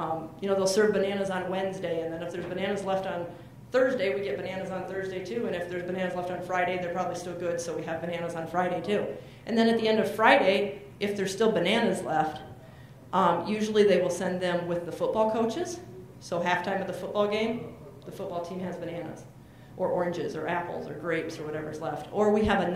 they'll serve bananas on Wednesday, and then if there's bananas left on Thursday, we get bananas on Thursday too, and if there's bananas left on Friday, they're probably still good, so we have bananas on Friday too. And then at the end of Friday, if there's still bananas left, usually they will send them with the football coaches. So halftime of the football game, the football team has bananas, or oranges, or apples, or grapes, or whatever's left. Or we have a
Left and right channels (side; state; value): both; identical; correlation 1.00